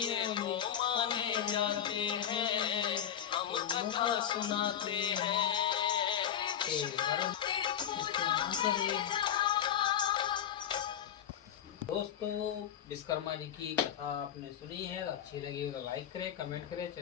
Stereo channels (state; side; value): quieter; right; 9.7 dB